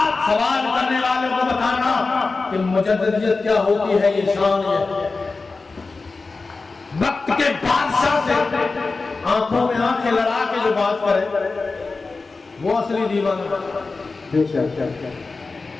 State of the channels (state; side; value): quieter; right; 3.9 dB